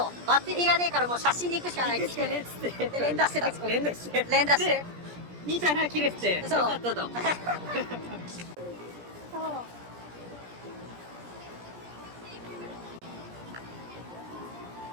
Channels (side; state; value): left; late; 17 ms